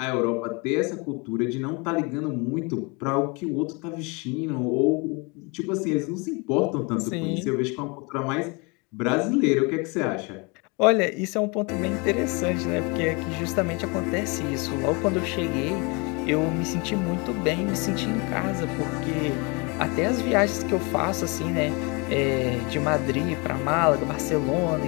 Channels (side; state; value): right; quieter; 29.7 dB